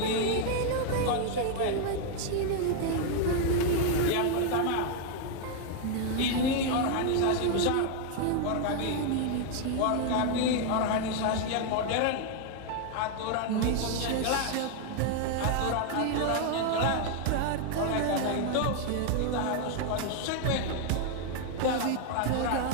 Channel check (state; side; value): different; both; correlation 0.00